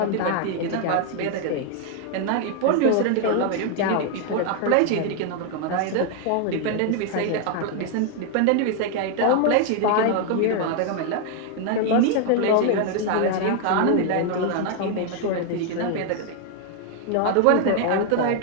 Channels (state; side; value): different; both; correlation 0.00